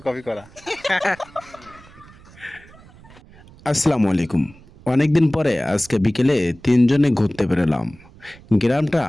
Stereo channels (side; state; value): right; noise; rumble, 24 dB below the sound